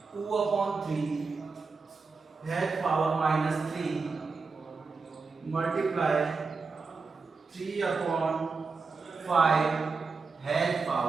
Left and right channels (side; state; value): left; quieter; 4.5 dB